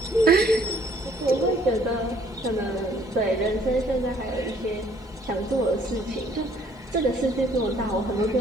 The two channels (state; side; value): normal; both; correlation 0.60